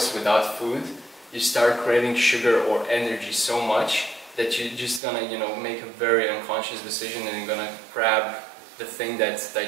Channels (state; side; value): drops out; left; at 5.0 s